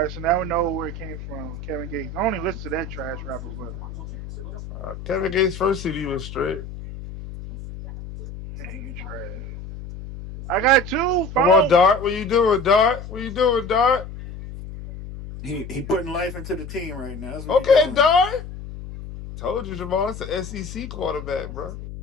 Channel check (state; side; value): noise; left; hum, 11 dB below the sound